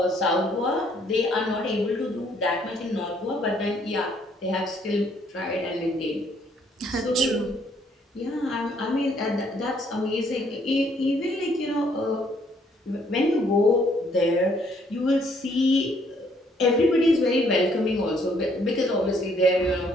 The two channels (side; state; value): both; normal; correlation 0.66